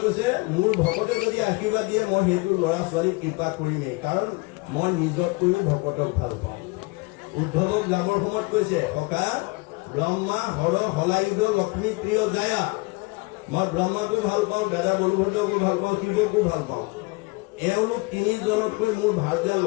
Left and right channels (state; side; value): quieter; right; 26.6 dB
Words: কৈছে মোৰ ভকতে যদি আশীৰ্বাদ দিয়ে মই সেইটো ল'ৰা ছোৱালীক কৃপা কৰিমেই, কাৰণ মই নিজতকৈও ভকতক ভাল পাওঁ। উদ্ধৱক লাভৰ সময়ত কৈছে সখা ব্ৰহ্মা হৰ হলায়ুধ লক্ষ্মী প্ৰিয় জায়া। মই ব্ৰহ্মাকো ভাল পাওঁ, দাদা বলভদ্ৰকো ভাল পাওঁ, শিৱকো ভাল পাওঁ। এওঁলোক তিনিজনতকৈ মোৰ ভাৰ্যা